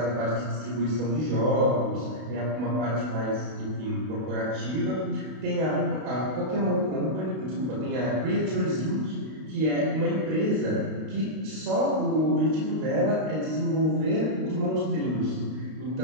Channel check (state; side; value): late; left; 32 ms